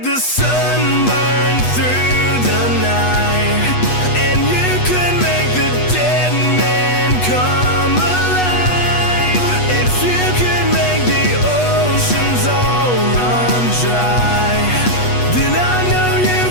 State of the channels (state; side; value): late; right; 8.2 ms